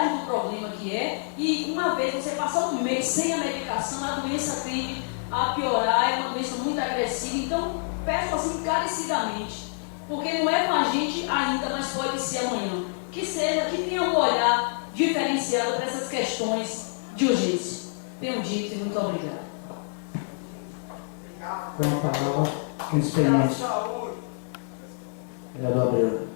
do problema que é, e uma vez você passar um mês sem a medicação, a doença tende a piorar, é uma doença muito agressiva. Então, peço assim encarecidamente, porque não é com a gente ainda, mas pode ser amanhã, que tenha um olhar diferenciado para essas questões de urgência. Tenho dito e muito obrigado. Com a palavra, pequeno expediente. Vereador Abreu.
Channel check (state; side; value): silent; right; 59 dB below the other